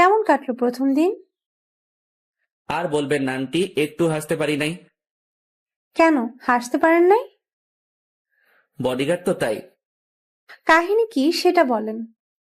কাটলো প্রথম দিন? আর বলবেন না আন্টি, একটু হাসতে পারি নাই। কেন হাসতে পারেন নাই? বডিগার্ড তো তাই। কাহিনী কি সেটা বলেন।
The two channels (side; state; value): both; identical; correlation 1.00